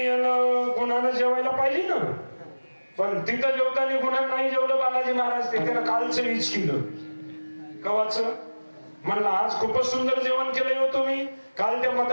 गुणानं जेवायला पाहिजे ना, पण तिथं जेवताना गुणानं नाही जेवलं बालाजी महाराज. ते त्यानं कालचं वीज केलं. कवाचं? म्हणलं आज खूपच सुंदर जेवण केलंय हो तुम्ही. काल त्या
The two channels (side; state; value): both; inverted; correlation -1.00